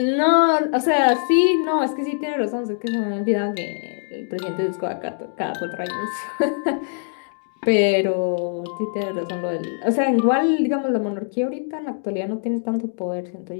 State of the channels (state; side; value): silent; right; digital silence